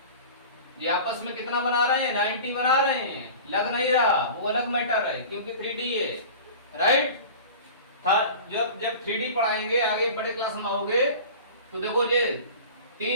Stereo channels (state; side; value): inverted; both; correlation -0.37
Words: ये आपस में कितना बना रहे हैं? 90 बना रहे हैं। लग नहीं रहा, वो अलग मैटर है, क्योंकि 3D है, राइट। जब 3D पढ़ाएंगे आगे बड़े क्लास में आओगे तो देखो ये